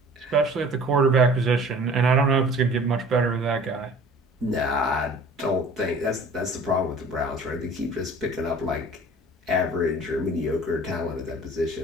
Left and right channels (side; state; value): both; normal; correlation 0.46